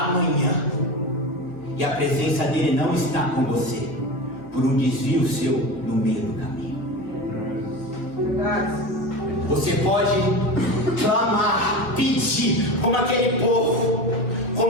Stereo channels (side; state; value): right; late; 2.1 ms